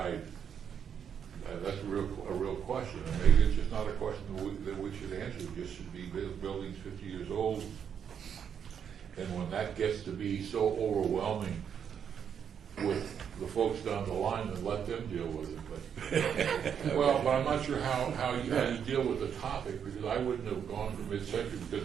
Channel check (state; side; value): quieter; left; 7.9 dB